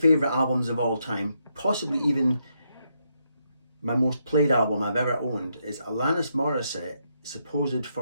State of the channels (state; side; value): inverted; both; correlation -0.79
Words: albums of all time, possibly even my most played album I've ever owned, is Alanis Morissette, Supposed